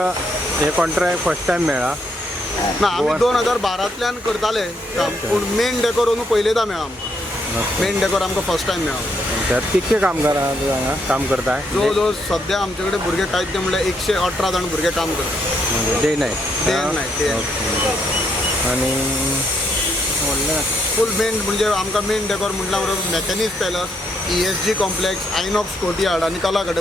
हे कॉन्ट्रॅक्ट फर्स्ट टायम मेळ्ळा? ना, आमी 2012तल्यान करताले काम, पूण मेन डेकोर अंदू पयलेंदा मेळ्ळा आमकां. मेन डेकोर आमकां फर्स्ट टायम मेळ्ळा. कितके कामगार हांगा काम करताय? जवळ जवळ सद्या आमचे कडेन भुरगे कांयच म्हणल्यार 118 जाण भुरगे काम करतात. डे नायट आनी फूल मेन म्हणजे आमकां मेन डेकोर म्हटल्या बरोबर Maquinez palace, ESG complex, INOX courtyard आनी कला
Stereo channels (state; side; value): normal; both; correlation 0.75